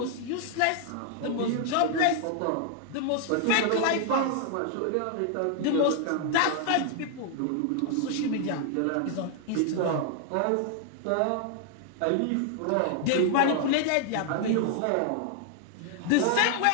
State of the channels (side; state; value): both; different; correlation 0.00